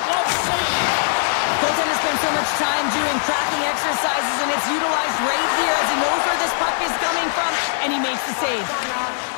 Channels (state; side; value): silent; right; digital silence